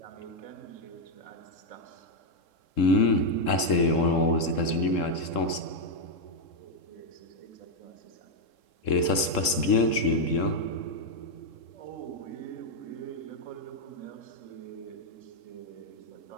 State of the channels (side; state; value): right; late; 3.7 ms